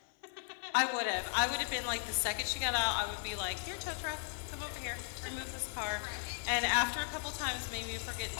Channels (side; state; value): right; silent; 53 dB below the other